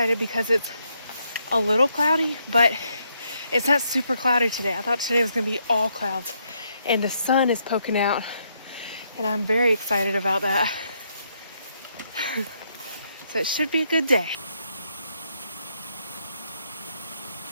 because it's a little cloudy, but it's not super cloudy today. I thought today was going to be all clouds, and the sun is poking out, and I'm very excited about that. So it should be a good day.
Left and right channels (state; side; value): inverted; both; correlation -0.76